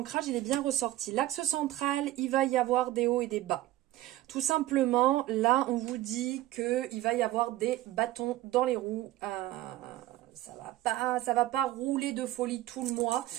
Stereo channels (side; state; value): left; quieter; 15.6 dB